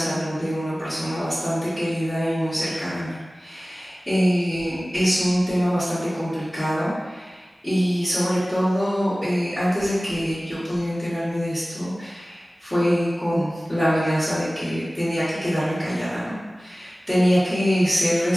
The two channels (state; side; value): normal; both; correlation 0.97